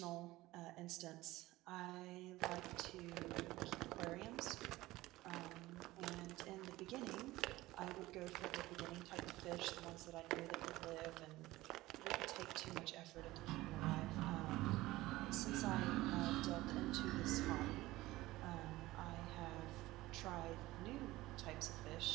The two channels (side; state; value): left; quieter; 18.0 dB